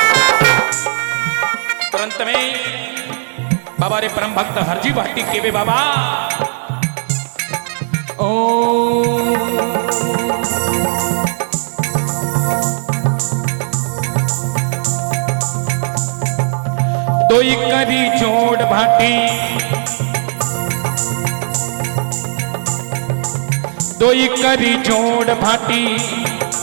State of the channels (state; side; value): silent; left; digital silence